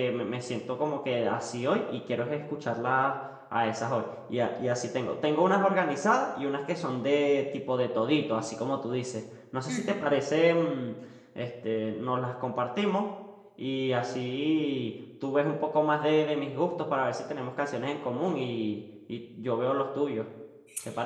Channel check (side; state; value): both; identical; correlation 1.00